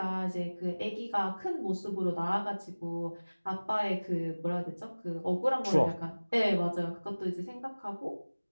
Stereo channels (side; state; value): both; inverted; correlation -1.00